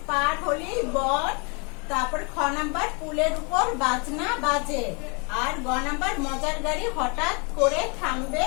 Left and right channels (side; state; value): right; quieter; 33.5 dB